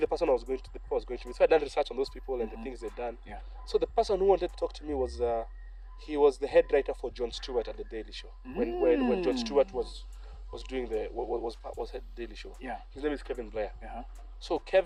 the person was going to me. So I done research on those people and the things they'd done. Yeah. So the person who wanted to talk to me was he was the head writer for Jon Stewart at the Daily Show. When Jon Stewart was doing was head Daily Show. Yeah. His name is Kevin Blair. So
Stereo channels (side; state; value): both; identical; correlation 1.00